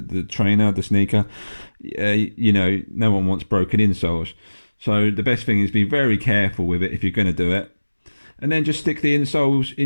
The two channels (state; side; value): inverted; both; correlation -1.00